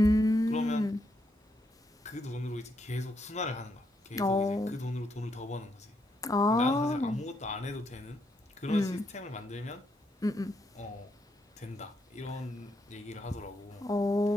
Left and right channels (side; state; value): both; normal; correlation 0.78